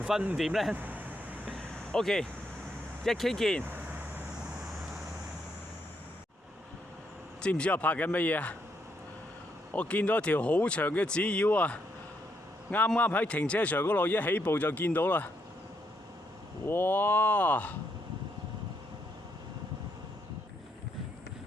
昏5點呢？ OK， 1K 見。知唔知我拍緊乜嘢啊？我見到一條好長嘅紙鷂啊！啱啱喺停車場嗰度一起步就見到啦。哇！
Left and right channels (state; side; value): normal; both; correlation 0.76